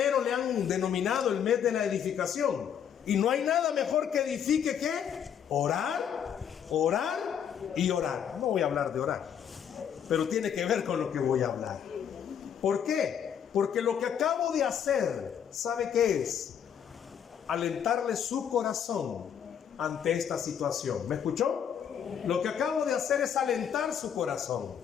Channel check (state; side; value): quieter; right; 8.5 dB